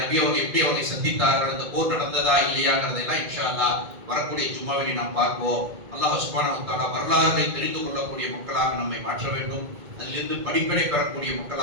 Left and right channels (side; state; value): left; late; 2.1 ms